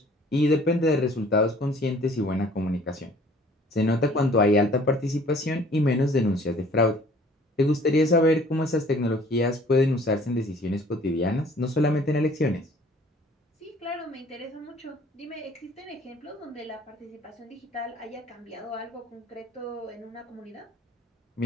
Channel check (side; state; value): both; normal; correlation 0.54